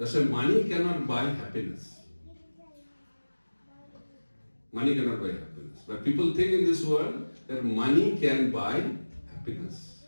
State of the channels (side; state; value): both; inverted; correlation -1.00